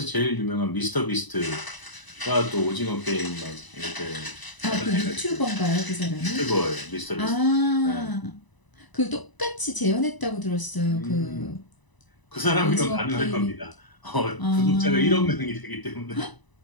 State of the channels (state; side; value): late; right; 1.0 ms